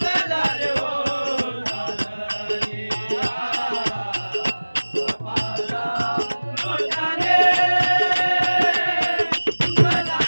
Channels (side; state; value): both; inverted; correlation -1.00